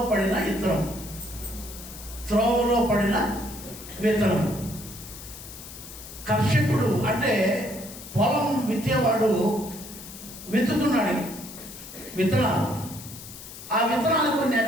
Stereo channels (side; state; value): left; noise; hiss, 14 dB below the sound